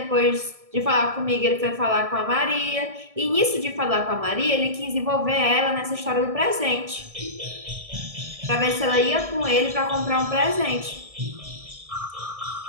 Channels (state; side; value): late; left; 1.6 ms